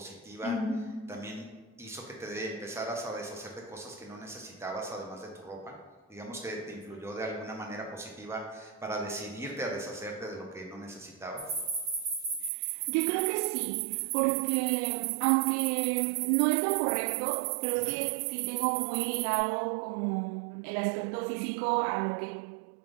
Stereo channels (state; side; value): drops out; left; at 12.5 s